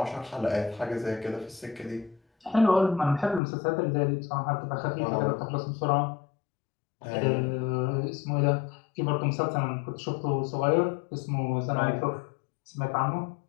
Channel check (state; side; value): drops out; right; at 3.4 s